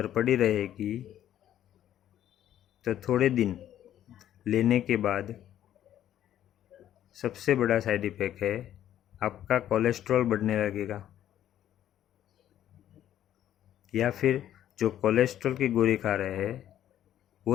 पड़ी रहेगी तो थोड़े दिन लेने के बाद सबसे बड़ा साइड इफ़ेक्ट है आपका कोलेस्ट्रॉल बढ़ने लगेगा। या फिर जो कोलेस्ट्रॉल की गोली खा रहे हैं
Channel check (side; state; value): right; quieter; 11.5 dB